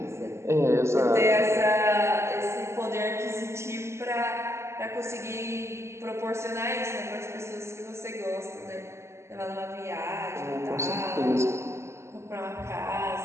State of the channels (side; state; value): left; late; 0.13 ms